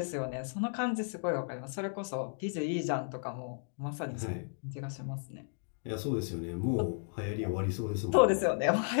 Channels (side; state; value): right; silent; 55 dB below the other